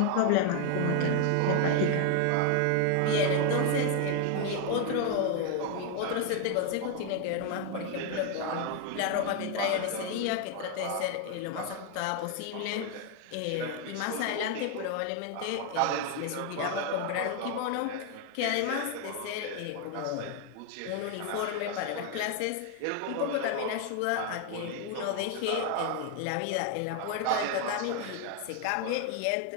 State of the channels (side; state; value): both; different; correlation 0.01